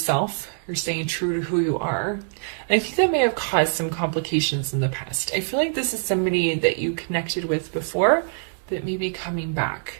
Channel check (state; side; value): silent; left; 62 dB below the other